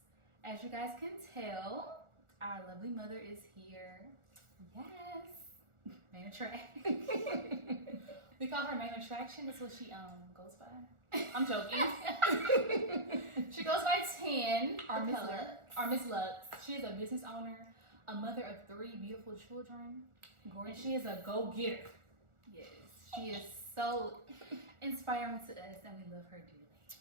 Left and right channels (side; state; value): left; late; 1.4 ms